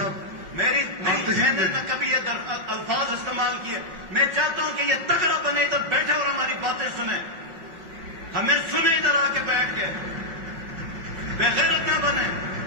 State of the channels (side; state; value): left; late; 5.4 ms